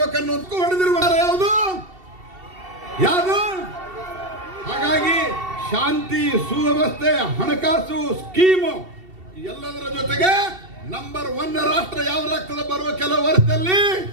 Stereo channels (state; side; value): late; left; 2.7 ms